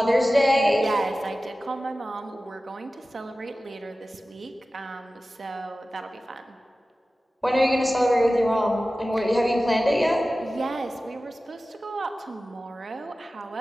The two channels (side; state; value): both; normal; correlation 0.96